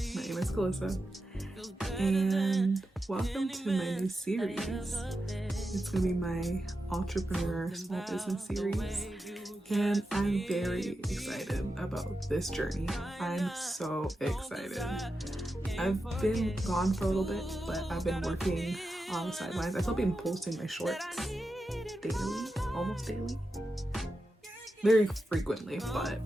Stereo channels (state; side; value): normal; both; correlation 0.90